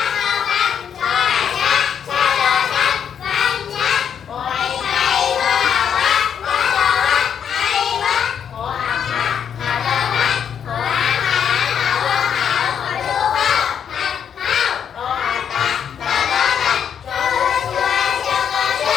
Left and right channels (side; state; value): right; quieter; 8.1 dB